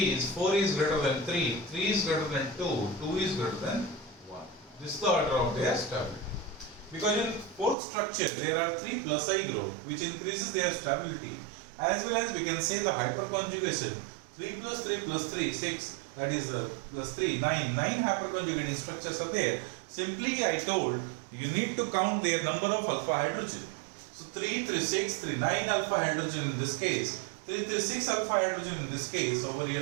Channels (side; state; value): left; drops out; at 7.8 s